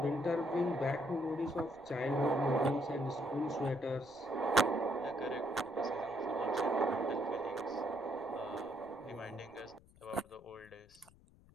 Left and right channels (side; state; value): left; noise; rumble, 26 dB below the sound